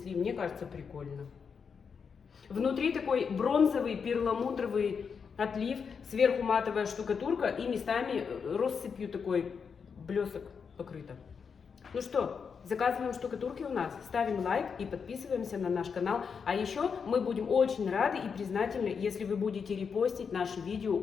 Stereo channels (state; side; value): quieter; right; 6.1 dB